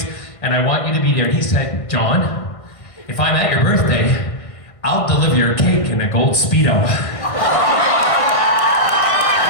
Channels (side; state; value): right; late; 1.6 ms